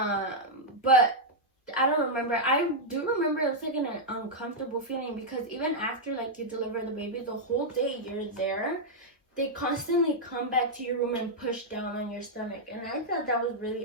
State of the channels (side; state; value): both; normal; correlation -0.03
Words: I don't remember. I do remember it's like an uncomfortable feeling, because even after like you deliver the baby, the whole day you're there, they constantly come back to your room and push down on your stomach, and I thought that was really